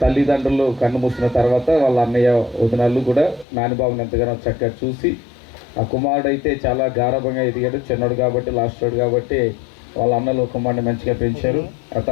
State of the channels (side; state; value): right; drops out; at 3.5 s